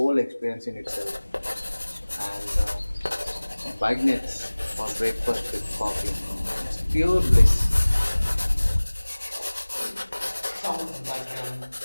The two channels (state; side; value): inverted; both; correlation -1.00